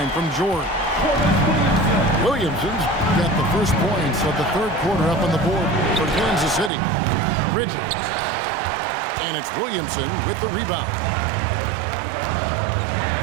from George. Williamson's got the first points of the third quarter up on the board for Kansas City. Bridges. And it's Williamson with the rebound.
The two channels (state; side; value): drops out; left; at 6.7 s